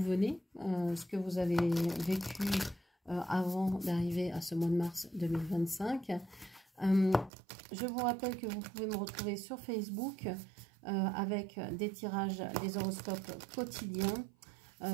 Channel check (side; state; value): left; drops out; at 7.3 s